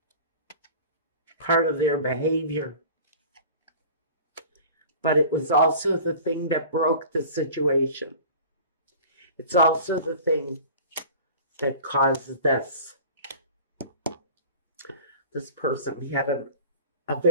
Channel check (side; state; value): both; inverted; correlation -0.41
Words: Part of their behavior. But it was also the thing that broke the situation. It's also the thing that caused this. This person had a